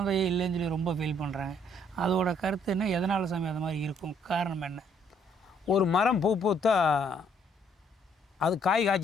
இல்லைன்னு சொல்லி ரொம்ப ஃபீல் பண்ணுறாங்க. அதோட கருத்து என்ன, எதனால் சாமி அது மாதிரி இருக்கும், காரணம் என்ன? ஒரு மரம் பூ பூத்தா அது காய்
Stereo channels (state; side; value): normal; both; correlation 0.66